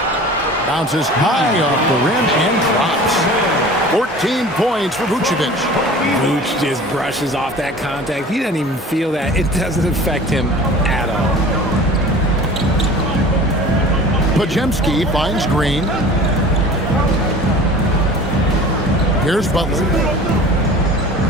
Bounces high off the rim and drops. 14 points for Vucevic. Vuce just brushes off that contact. He doesn't even feel that. It doesn't affect him at all. Pajemski finds Green. Here's Butler.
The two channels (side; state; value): both; normal; correlation 0.42